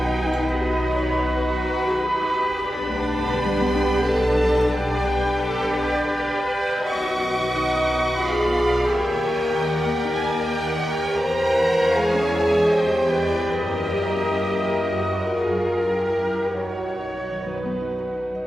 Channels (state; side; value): normal; both; correlation 0.91